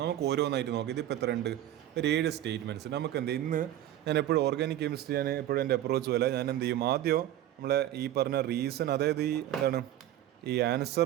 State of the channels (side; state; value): left; quieter; 12.8 dB